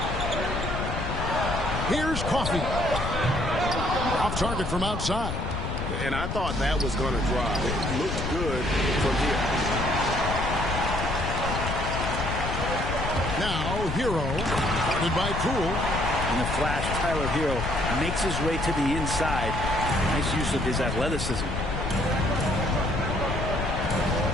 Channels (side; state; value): left; noise; rumble, 3 dB below the sound